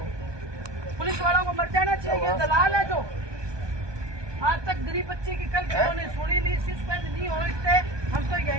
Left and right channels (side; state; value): left; late; 1.2 ms